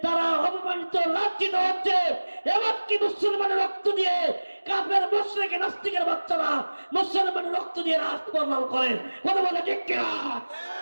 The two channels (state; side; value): inverted; both; correlation -1.00